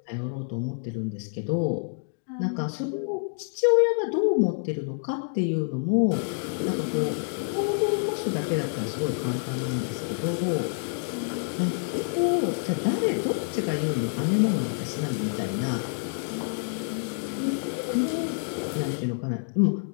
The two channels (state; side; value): silent; right; digital silence